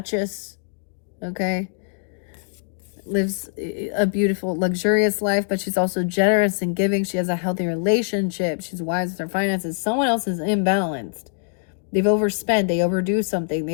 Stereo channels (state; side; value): silent; right; digital silence